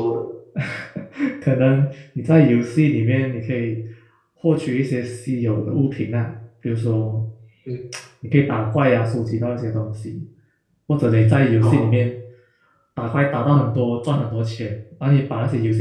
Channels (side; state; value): both; identical; correlation 1.00